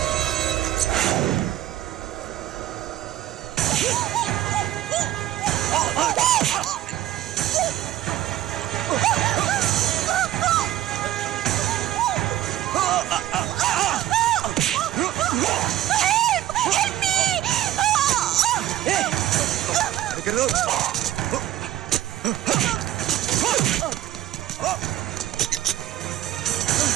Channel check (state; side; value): quieter; left; 13.4 dB